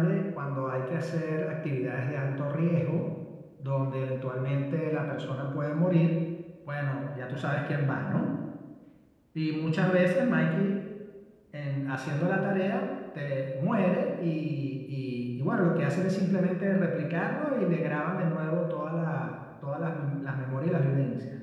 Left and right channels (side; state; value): both; identical; correlation 1.00